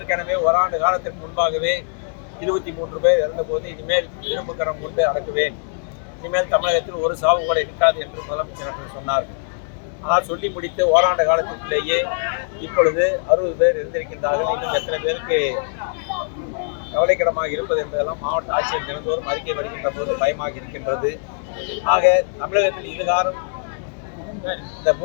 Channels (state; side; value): silent; right; 61 dB below the other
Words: ஓராண்டு காலத்திற்கு முன்பாகவே 23 பேர் இறந்தபோது இனிமேல் இரும்பு கரம் கொண்டு அடக்குவேன், இனிமேல் தமிழகத்தில் ஒரு சாவு கூட இருக்காது என்று முதலமைச்சர் அவர்கள் சொன்னார்கள். ஆனால் சொல்லி முடித்து ஓராண்டு காலத்திலேயே இப்பொழுது 60 பேர் இருந்திருக்கின்றார்கள். இன்னும் எத்தனை பேருக்கு கவலைக்கிடமாக இருப்பது என்பதெல்லாம் மாவட்ட ஆட்சியர் தினந்தோறும் அறிக்கை வருகின்ற போது பயமாக இருக்கின்றது. ஆக தமிழகத்தில் இதுகாரம் இந்த